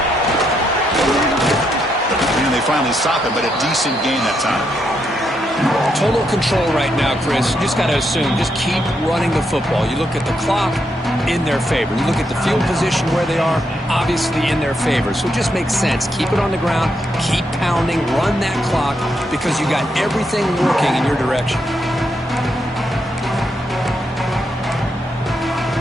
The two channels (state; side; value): normal; both; correlation 0.79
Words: And they finally stop it, but a decent gain that time. Total control right now, Chris. You just got to assume, just keep running the football. You look at the clock, in their favor. You look at the field position where they are, obviously in their favor. So it just makes sense. Keep it on the ground, keep pounding, run that clock, because you got everything working in your direction.